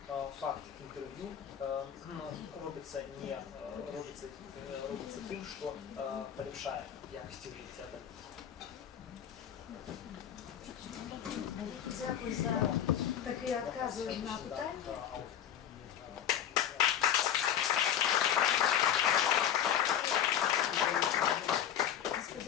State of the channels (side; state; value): right; quieter; 9.8 dB